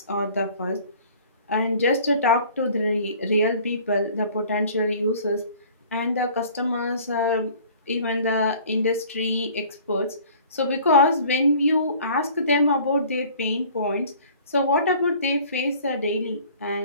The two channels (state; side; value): inverted; both; correlation -0.50